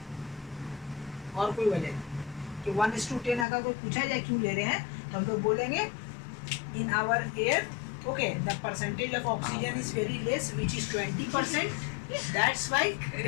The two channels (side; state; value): right; drops out; at 3.5 s